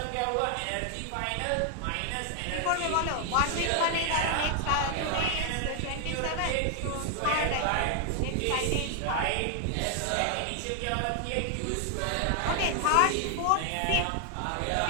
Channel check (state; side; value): different; both; correlation 0.00